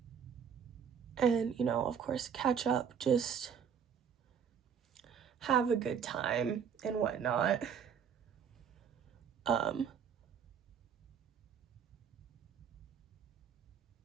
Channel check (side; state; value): left; quieter; 7.4 dB